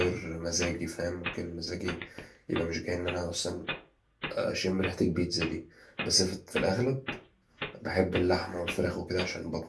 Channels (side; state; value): both; identical; correlation 1.00